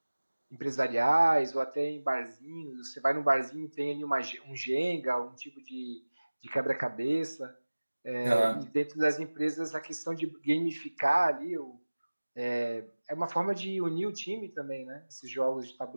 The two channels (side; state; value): both; inverted; correlation -1.00